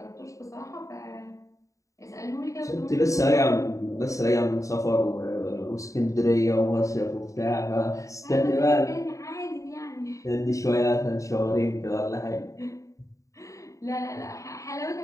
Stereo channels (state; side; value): late; right; 0.16 ms